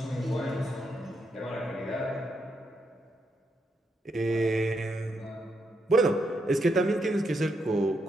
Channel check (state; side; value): normal; both; correlation 0.80